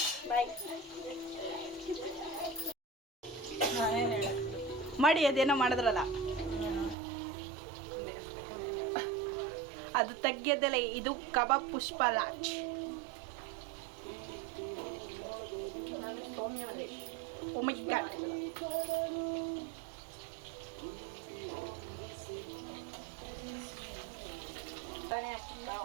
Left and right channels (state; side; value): drops out; left; at 7.0 s